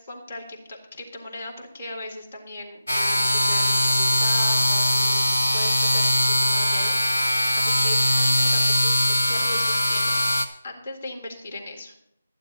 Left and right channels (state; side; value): inverted; both; correlation -0.91